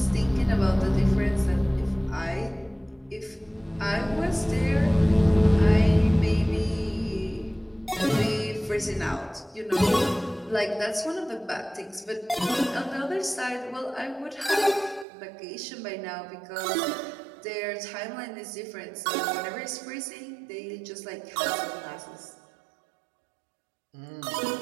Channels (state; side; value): drops out; left; at 15.1 s